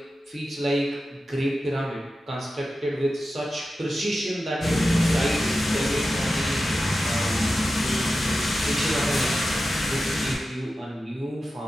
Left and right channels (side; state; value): both; normal; correlation 0.92